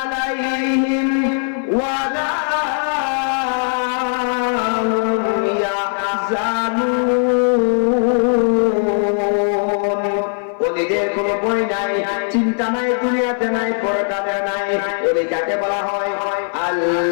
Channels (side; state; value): right; silent; 59 dB below the other